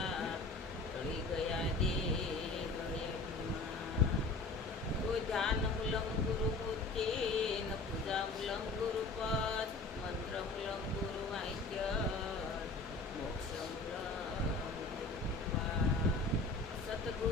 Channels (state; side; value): quieter; right; 3.4 dB